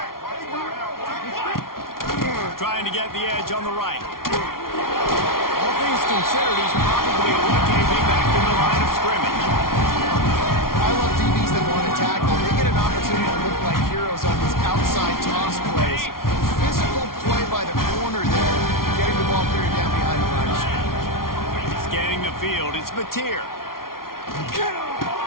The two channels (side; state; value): right; late; 0.93 ms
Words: Trying to get the edge on the right. All things considered, he's probably lucky to be back in the line of scrimmage. I love DBs that want to tackle. They get an opportunity to look like heroes on these outside toss plays. Physical play by the corner there, getting the ball cleared down behind the line of scrimmage. Scanning the field, it's Mateer.